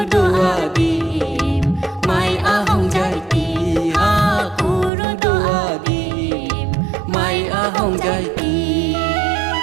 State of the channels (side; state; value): left; drops out; at 4.9 s